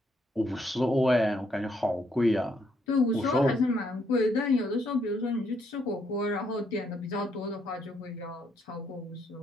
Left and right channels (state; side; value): normal; both; correlation 0.73